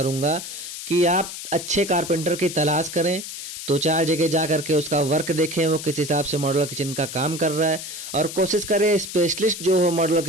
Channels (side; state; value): left; noise; hiss, 9 dB below the sound